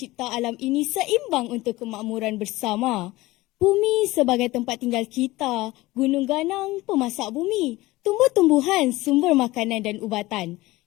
alam ini seimbang untuk kemakmuran bersama. Bumi sebagai tempat tinggal kita, gunung ganang pemasak bumi, tumbuh-tumbuhan sumber makanan dan ubatan.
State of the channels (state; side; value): quieter; right; 19.2 dB